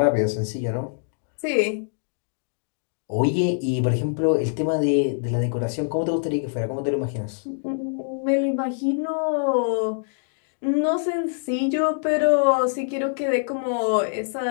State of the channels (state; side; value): silent; right; digital silence